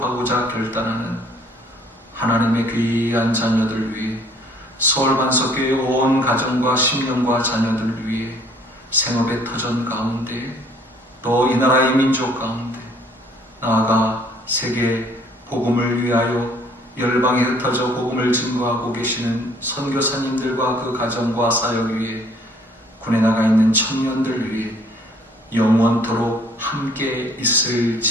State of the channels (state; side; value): normal; both; correlation 0.59